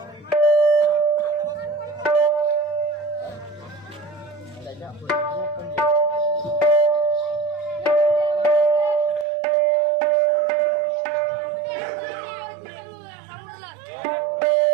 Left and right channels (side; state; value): left; drops out; at 9.2 s